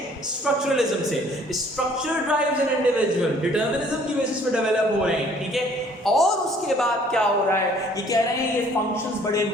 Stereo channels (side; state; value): both; normal; correlation 0.57